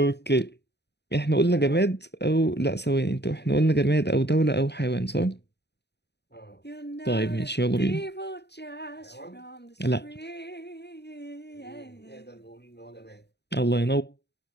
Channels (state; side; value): late; right; 0.49 ms